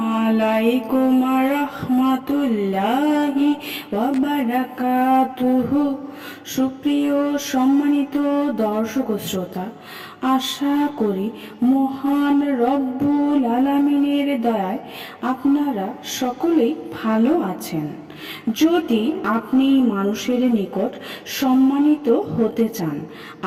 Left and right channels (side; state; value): both; identical; correlation 1.00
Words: আলাইকুম রহমতুল্লাহি ওয়া বারাকাতুহু। সুপ্রিয় সম্মানিত দর্শক ও শ্রোতা, আশা করি মহান রব্বুল আলামিনের দয়ায় আপনারা সকলেই ভালো আছেন। যদি আপনি মানুষের নিকট সম্মানিত হতে চান,